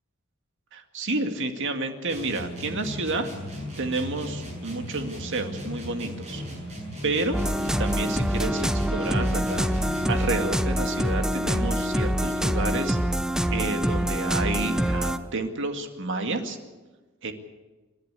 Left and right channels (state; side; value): normal; both; correlation 0.61